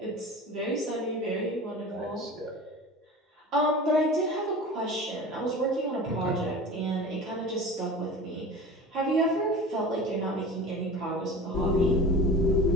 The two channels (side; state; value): both; normal; correlation 0.36